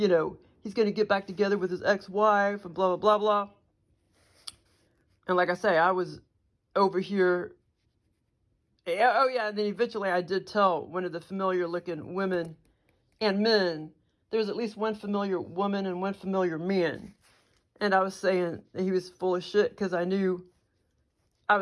to get back together with his ex-wife and blah, blah, blah, blah. And like I say, I was over here. Oh, yeah. And then eventually I did tell one of the familiar looking women and men, there's at least one familiar woman and one familiar man. And I was saying that he was full of shit, because I knew, I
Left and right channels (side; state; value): both; identical; correlation 1.00